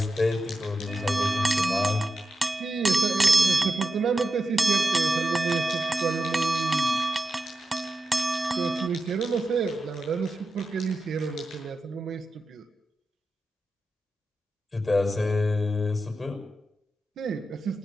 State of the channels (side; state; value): both; normal; correlation 0.91